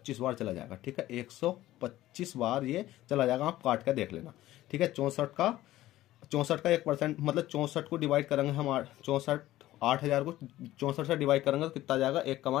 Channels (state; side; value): quieter; right; 15.2 dB